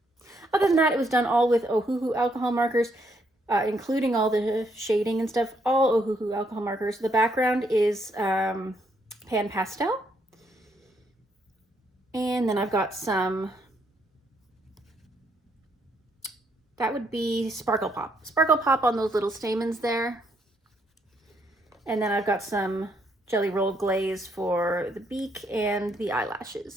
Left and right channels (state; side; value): normal; both; correlation 0.73